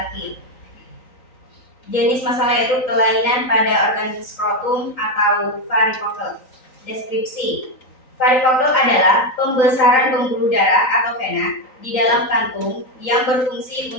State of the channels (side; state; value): right; late; 3.9 ms